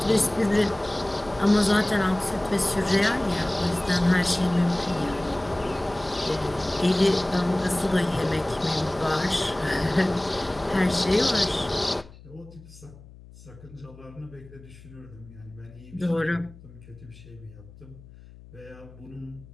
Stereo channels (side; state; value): left; noise; hum, 20 dB below the sound